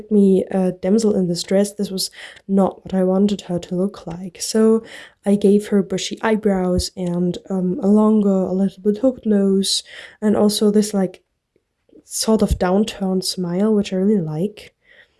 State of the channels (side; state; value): both; identical; correlation 1.00